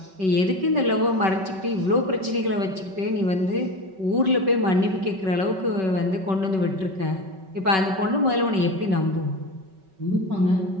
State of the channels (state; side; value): late; left; 5.3 ms